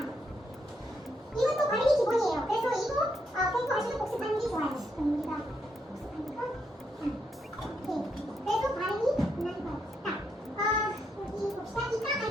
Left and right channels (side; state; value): both; normal; correlation 0.78